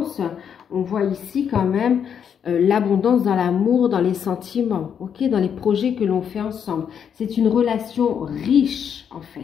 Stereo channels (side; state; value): right; quieter; 7.9 dB